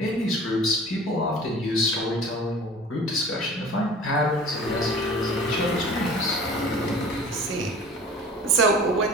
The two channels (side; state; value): both; normal; correlation 0.43